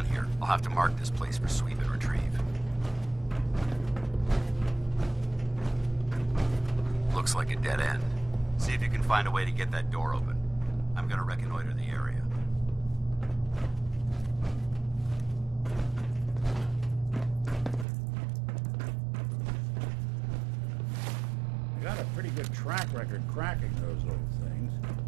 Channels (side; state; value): left; drops out; at 17.9 s